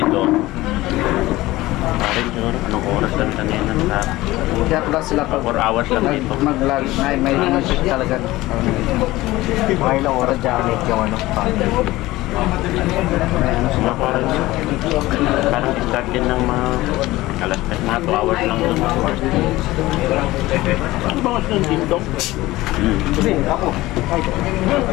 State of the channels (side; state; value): right; quieter; 18.1 dB